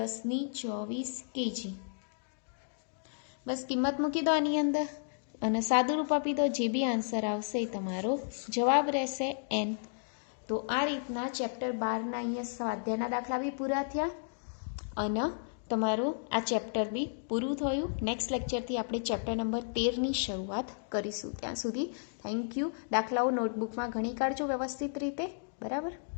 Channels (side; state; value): right; silent; digital silence